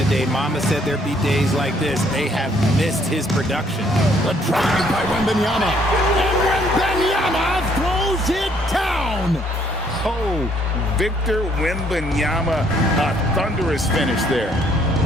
Mama said there'd be days like this. They have missed his production. The drive by Wembanyama. And Wembanyama throws it down. Oh, Victor Wembanyama, a thunderous finish there.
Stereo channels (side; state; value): both; normal; correlation 0.66